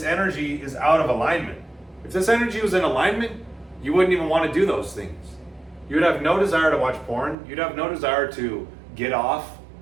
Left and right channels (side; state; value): left; drops out; at 7.4 s